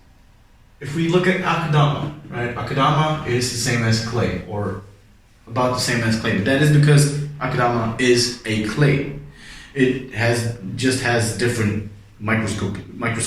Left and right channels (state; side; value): identical; both; correlation 1.00